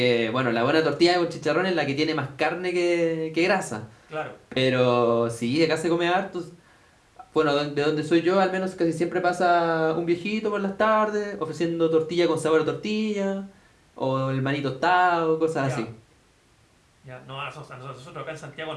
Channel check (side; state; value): both; identical; correlation 1.00